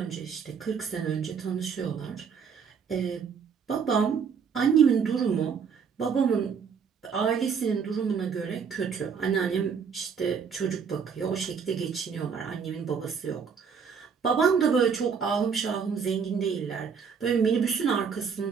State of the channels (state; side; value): quieter; left; 6.4 dB